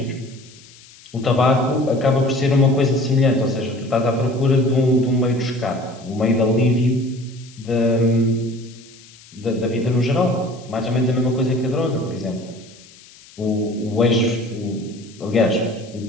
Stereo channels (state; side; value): noise; left; hiss, 23 dB below the sound